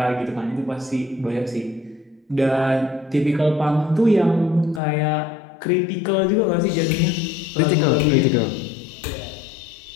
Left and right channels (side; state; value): right; drops out; at 4.8 s